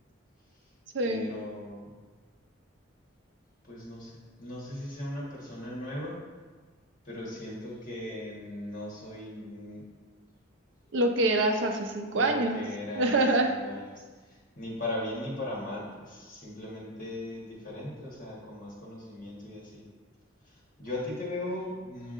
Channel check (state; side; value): normal; both; correlation 0.06